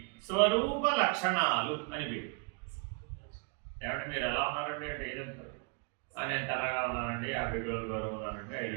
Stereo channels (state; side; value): quieter; left; 35.1 dB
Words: స్వరూప లక్షణాలు అని పేరు. ఏమంటే మీరు ఎలా ఉన్నారండి అంటే ఏదంటారు? నేను తెల్లగా ఉన్నానండి, 50 కిలోలు బరువు ఉన్నానండి, 5